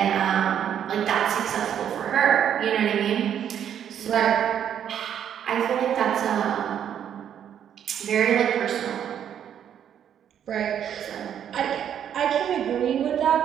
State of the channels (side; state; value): left; quieter; 9.3 dB